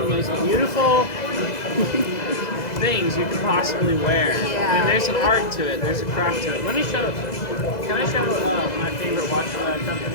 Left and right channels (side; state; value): right; late; 2.0 ms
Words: the most beautiful things you can possibly wear. Yeah. And there's an art to it. There's a craft to it. Let me show. Can I show my favorite watch